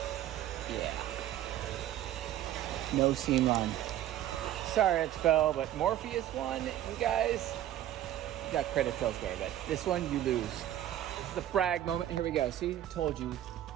Yeah. No seam line. Sorry, Expo, but Morpheus one, you guys, you got credit elsewhere, but this one you lose. This is the brag moment. Here we go. See, told you.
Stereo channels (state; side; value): quieter; left; 12.5 dB